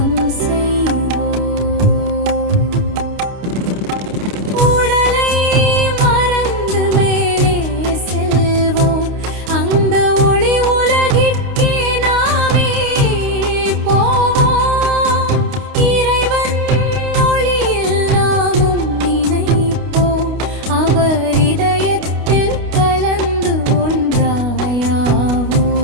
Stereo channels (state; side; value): late; left; 29 ms